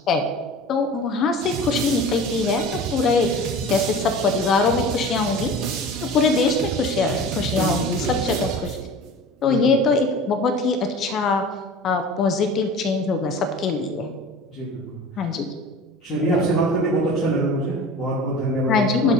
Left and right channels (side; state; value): both; normal; correlation 0.38